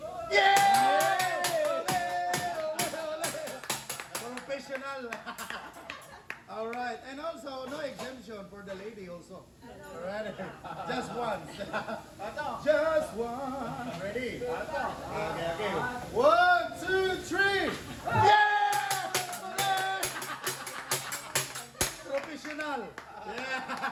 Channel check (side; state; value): both; identical; correlation 1.00